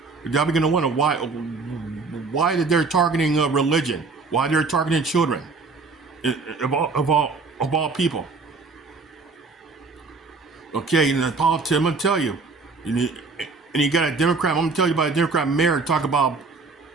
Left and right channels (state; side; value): quieter; left; 4.1 dB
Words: y'all begin to wonder why they're targeting religion, why they're targeting children, of all people. Okay, and the politics, I'm gonna tell you, and you got a Democrat. I'm gonna tell you about a Democrat mayor talk about